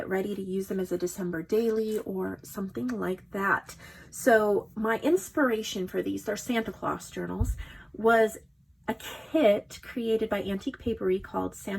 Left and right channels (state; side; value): identical; both; correlation 1.00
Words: ready to use them as a December daily or something like that. So my inspiration for these, they're Santa Claus journals, was a kit created by Antique Paperie called